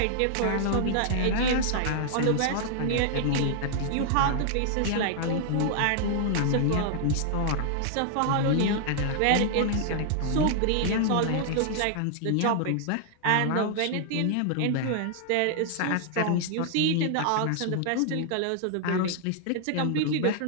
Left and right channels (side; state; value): both; different; correlation 0.00